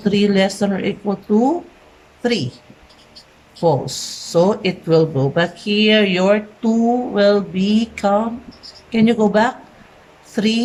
less than or equal to 3? False. So it will go back here. Your 2 will become, can you go back?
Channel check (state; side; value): identical; both; correlation 1.00